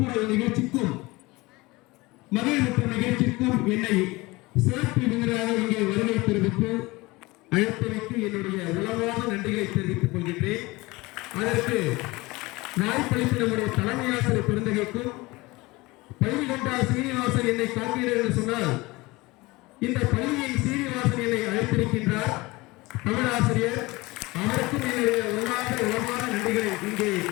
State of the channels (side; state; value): right; quieter; 22.0 dB